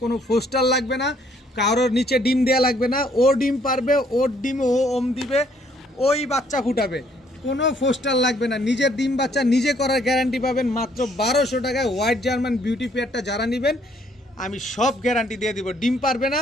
কোনো ফোস্টার লাগবে না, কারোর নিচে ডিম দেওয়া লাগবে না, ও ডিম পারবে, ওর ডিম ও ওম দিবে, ওই বাচ্চা ফুটাবে, কোনো ফোস্টার লাগবে না, নিজের ডিম বাচ্চা নিজে করার গ্যারান্টি পাবেন মাত্র 1200 টাকায়। হোয়াইট জার্মান বিউটি পেয়ারটা যারা নেবেন আমি সব গ্যারান্টি দিয়ে দিব, ডিম পারবে না,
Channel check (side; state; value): both; normal; correlation 0.65